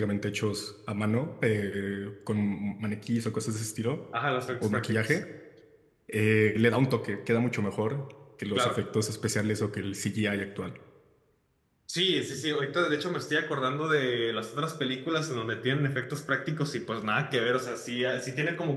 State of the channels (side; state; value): both; identical; correlation 1.00